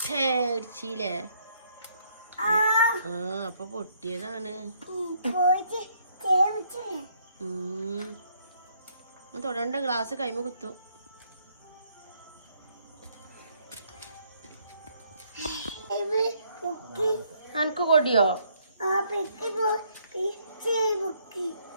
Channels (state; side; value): inverted; both; correlation -0.68